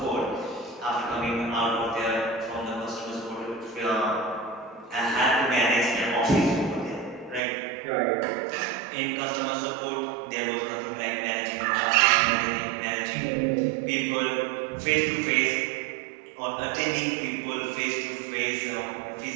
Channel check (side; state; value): left; drops out; at 7.4 s